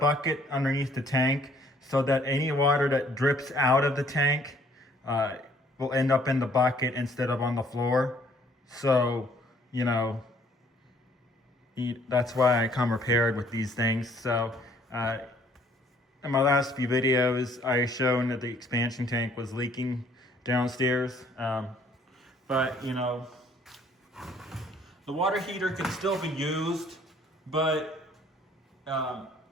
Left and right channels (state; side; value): normal; both; correlation 0.61